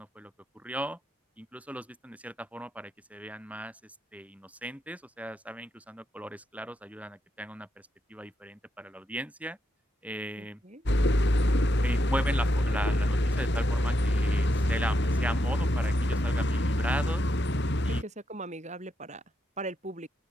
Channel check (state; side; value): normal; both; correlation 0.82